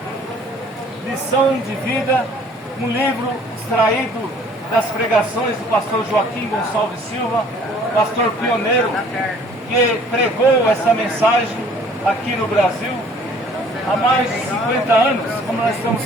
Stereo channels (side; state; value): both; normal; correlation 0.55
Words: Lição de Vida, um livro extraído das pregações do pastor Joaquim Gonçalves Silva, pastor pioneiro que pregou essa mensagem aqui no Brasil há mais de 50 anos, como nós estamos